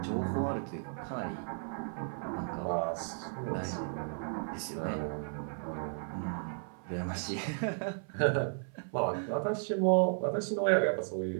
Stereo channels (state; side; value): silent; left; 55 dB below the other